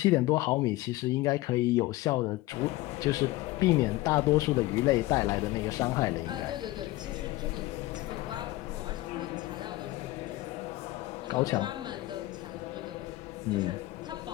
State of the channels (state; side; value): quieter; right; 18.2 dB